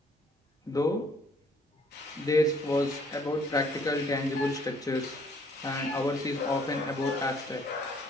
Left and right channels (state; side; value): normal; both; correlation 0.62